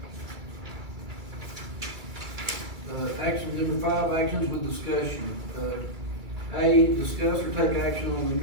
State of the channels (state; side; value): late; left; 2.4 ms